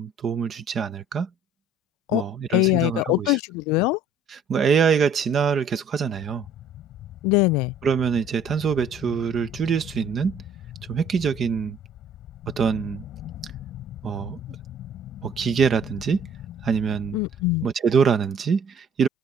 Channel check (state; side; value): normal; both; correlation 0.54